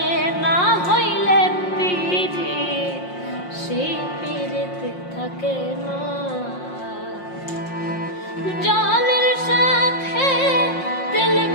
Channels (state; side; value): late; right; 5.6 ms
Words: না হইলে পীড়িত সেই পীড়িত থাকে না। জলের সাথে তেল